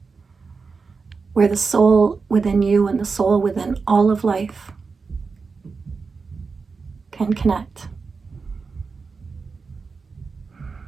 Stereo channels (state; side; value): quieter; left; 4.8 dB